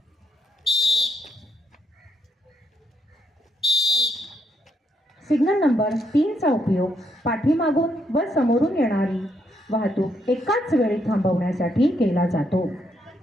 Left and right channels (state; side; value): normal; both; correlation 0.77